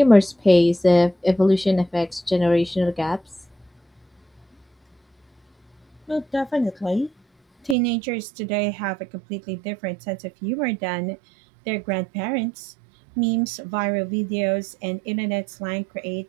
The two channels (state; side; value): drops out; left; at 7.8 s